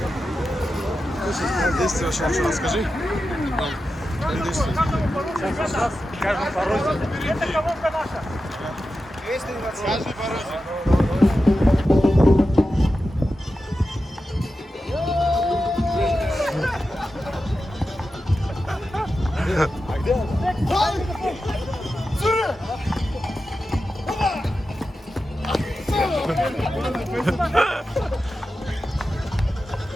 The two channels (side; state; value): both; normal; correlation 0.91